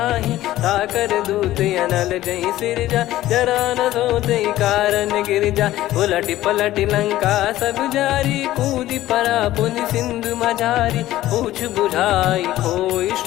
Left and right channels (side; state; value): right; quieter; 15.0 dB